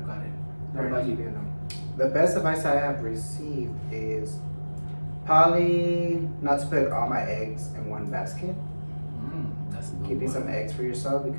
gotten. What about you? The best advice I have received is probably not to put all my eggs in one basket. That's a good Keeping one. some eggs for yourself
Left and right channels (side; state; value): both; inverted; correlation -1.00